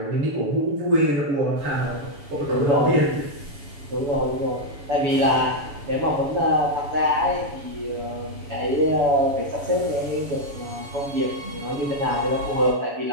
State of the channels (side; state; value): left; late; 7.1 ms